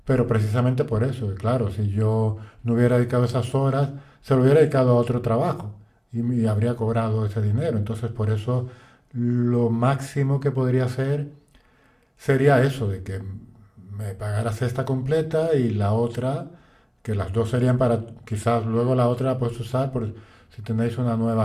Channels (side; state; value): both; identical; correlation 1.00